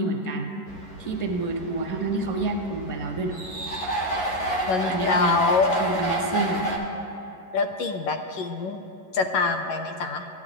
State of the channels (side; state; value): right; late; 11 ms